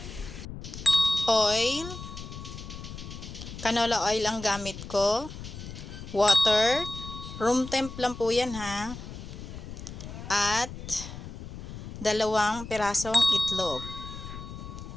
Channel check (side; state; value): left; noise; rumble, 11 dB below the sound